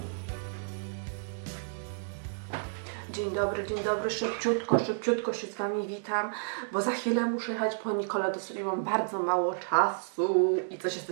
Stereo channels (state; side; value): silent; left; digital silence